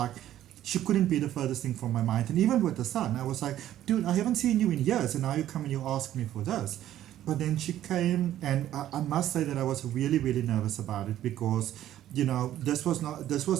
she couldn't be the furthest thing from my mind. And even with the son, I was like, dude, I haven't seen you in years, and now you come and you ask me for this. But then she came, and I must say that I was really, really nervous about it, because, you know, this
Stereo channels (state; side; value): quieter; left; 12.4 dB